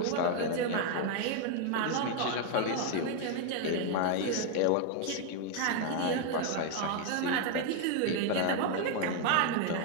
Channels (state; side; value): different; both; correlation 0.01